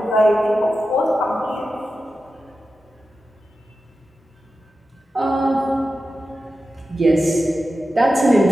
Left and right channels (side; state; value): both; normal; correlation 0.92